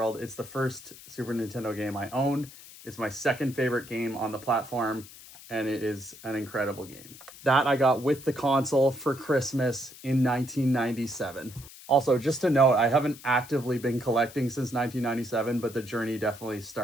It's the first Super Nintendo game I owned. It's my second favorite game on the platform, and it is an incredible game. That I got with the console for Christmas in 1997. Also, just to note, I haven't actively been collecting since 1997, but the journey definitely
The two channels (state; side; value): noise; left; hiss, 18 dB below the sound